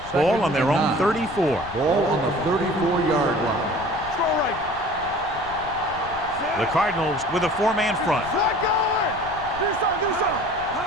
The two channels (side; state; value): left; noise; rumble, 17 dB below the sound